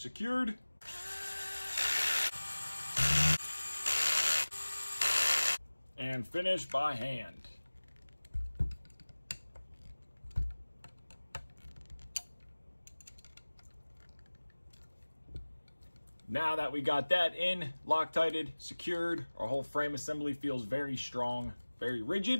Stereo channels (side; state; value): both; inverted; correlation -1.00